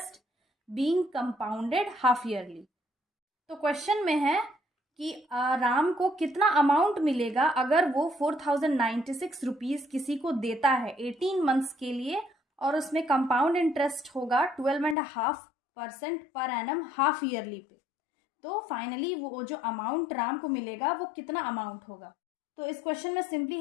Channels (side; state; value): right; drops out; at 15.0 s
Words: being compounded half yearly. तो question में है कि राम को कितना amount मिलेगा अगर वो 4096 रुपीज़ किसी को देता है 18 मंथ्स के लिए और उसमें कंपाउंड इंटरेस्ट होगा 12.5% पर एनम हाफ ईयरली पे। तो फाइनली वो जो अमाउंट राम को मिलेगा वो कितना अमाउंट होगा। तो इस क्वेश्चन में सिंपली